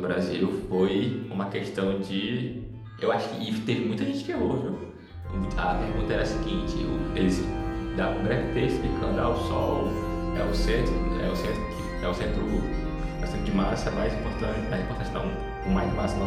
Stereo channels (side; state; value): both; identical; correlation 1.00